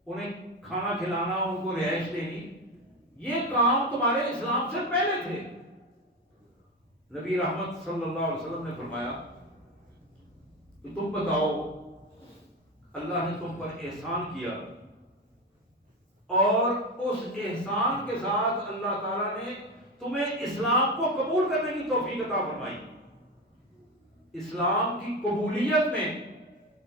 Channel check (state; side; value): normal; both; correlation 0.20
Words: انہیں کھانا کھلانا، ان کو رہائش دینی. یہ کام تمہارے اسلام سے پہلے تھے. نبی رحمت صلی اللہ علیہ وسلم نے فرمایا کہ تم بتاؤ اللہ نے تم پر احسان کیا، اور اس احسان کے ساتھ اللہ تعالیٰ نے تمہیں اسلام کو قبول کرنے کی توفیق عطا فرمائی. اسلام کی قبولیت میں